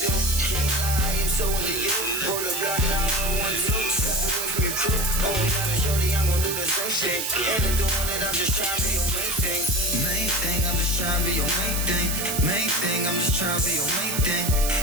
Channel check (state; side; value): noise; right; hiss, 2 dB below the sound